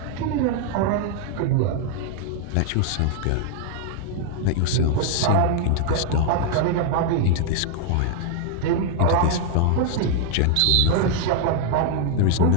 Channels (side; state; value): both; different; correlation 0.00